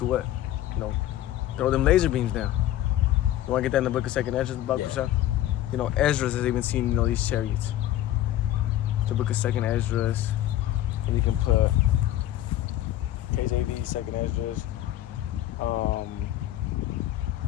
what? Throw them laser beams down. You want to get that in the book of 2nd Ezra, about Kushah? Ezra has even seen, these chariots. The book of 2nd Ezra. And you can put KJV, second Esdras,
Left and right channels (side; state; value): right; quieter; 13.2 dB